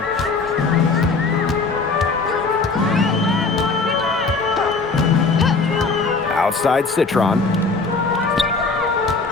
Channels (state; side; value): quieter; right; 4.2 dB